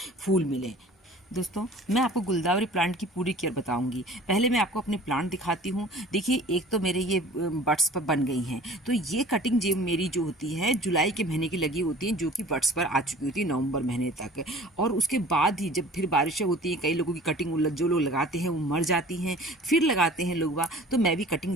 फूल मिलें। दोस्तों, मैं आपको गुलदावरी प्लांट की पूरी केयर बताऊंगी। पहले मैं आपको अपने प्लांट दिखाती हूँ। देखिए, एक तो मेरे ये बड्स पर बन गई हैं, तो ये कटिंग जो मेरी जो होती है जुलाई के महीने की लगी होती हैं, जो कि बड्स पर आ चुकी होती है नवंबर महीने तक। और उसके बाद ही जब फिर बारिशें होती हैं, कई लोगों की कटिंग जो लोग लगाते हैं वो मर जाती हैं, फिर लगाते हैं लोग, तो मैं भी कटिंग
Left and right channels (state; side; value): normal; both; correlation 0.46